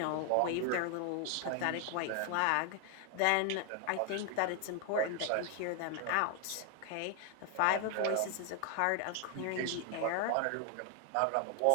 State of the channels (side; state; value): both; different; correlation 0.00